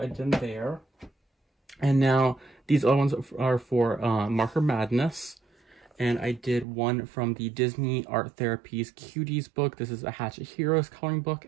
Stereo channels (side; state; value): left; drops out; at 6.7 s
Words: I did there. And now these other ones are for Marker Madness, and I did one from the Disney Art Therapies Cuties book. This is a Hatchet Heroes coloring book,